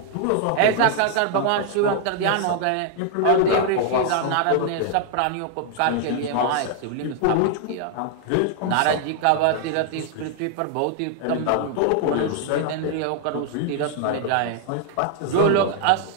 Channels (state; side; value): different; both; correlation 0.00